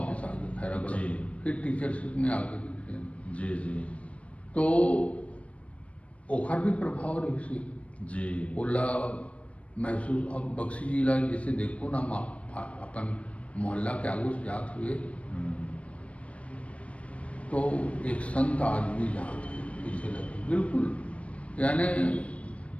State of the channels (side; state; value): right; late; 0.063 ms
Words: आ गए खैरागढ़, जी। फिर टीचरशिप में आ गए। जी जी तो ओखर भी प्रभाव रही से जी ओला महसूस। अब बख्शी जी ला जैसे देखो ना अपन मोहल्ला के आगू से जात हुए तो एक संत आदमी जात है पीछे लगे बिल्कुल, यानी